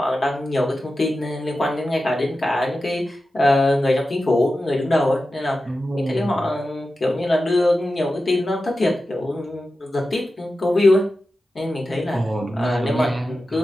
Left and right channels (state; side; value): normal; both; correlation 0.93